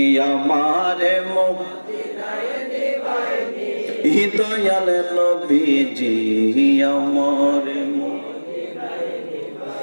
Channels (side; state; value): both; inverted; correlation -1.00